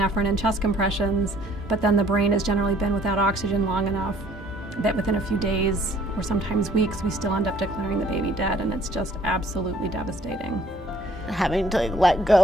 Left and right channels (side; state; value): both; normal; correlation 0.59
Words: and chest compressions, but then the brain has generally been without oxygen long enough that within a few days or sometimes weeks we still end up declaring the baby dead, and it's just absolutely devastating. Having to let